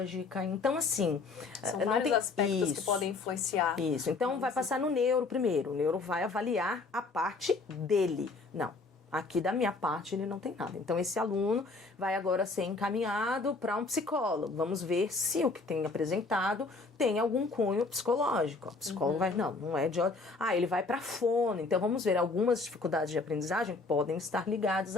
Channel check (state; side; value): quieter; right; 3.8 dB